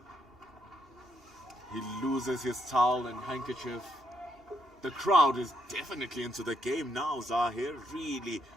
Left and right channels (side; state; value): both; normal; correlation 0.75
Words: He loses his towel and handkerchief. The crowd is definitely into the game now, Zahir.